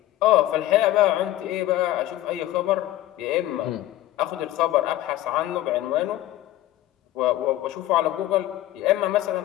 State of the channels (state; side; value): quieter; right; 14.7 dB